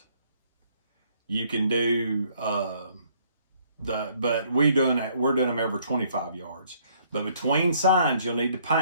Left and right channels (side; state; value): both; inverted; correlation -0.65